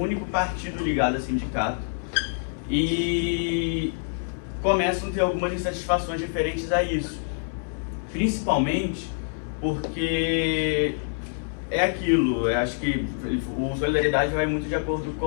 partido ligado a sindicato, e começam a ter algumas insatisfações referentes a isso, principalmente porque é aquilo, eu acho que o Solidariedade vai muito de acordo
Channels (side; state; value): right; silent; 61 dB below the other